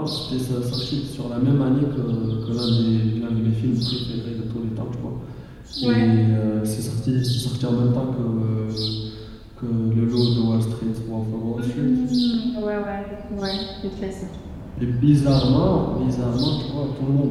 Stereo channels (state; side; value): identical; both; correlation 1.00